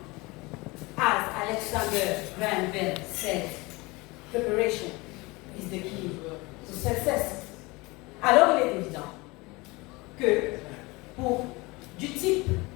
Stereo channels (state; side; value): quieter; right; 23.9 dB